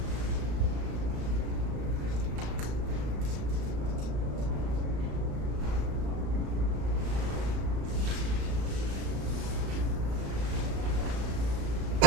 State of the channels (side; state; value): left; late; 35 ms